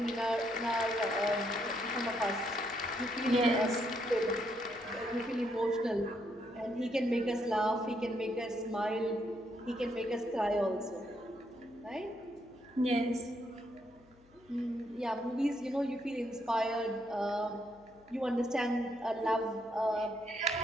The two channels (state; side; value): noise; left; hum, 29 dB below the sound